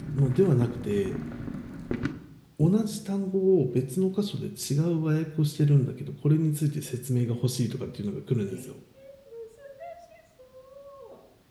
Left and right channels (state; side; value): identical; both; correlation 1.00